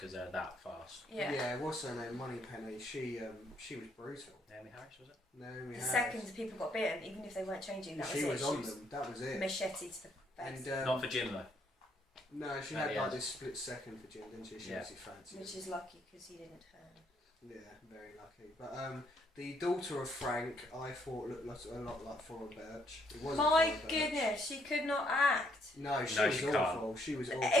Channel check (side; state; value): both; normal; correlation 0.70